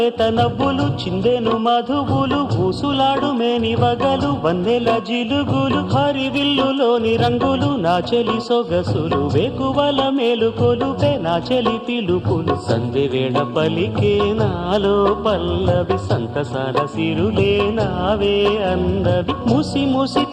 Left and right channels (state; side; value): identical; both; correlation 1.00